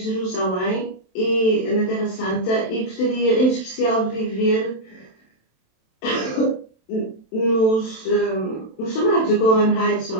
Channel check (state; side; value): late; right; 27 ms